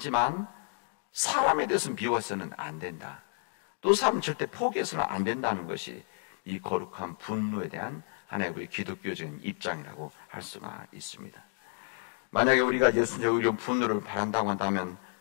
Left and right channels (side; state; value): right; silent; 57 dB below the other